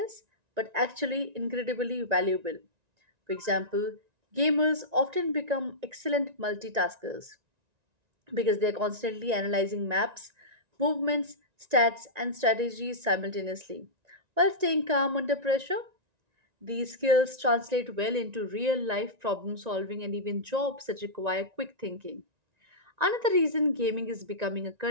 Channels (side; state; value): left; late; 1.9 ms